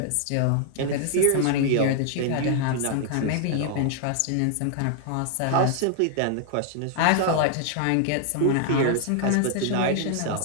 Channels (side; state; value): both; different; correlation 0.00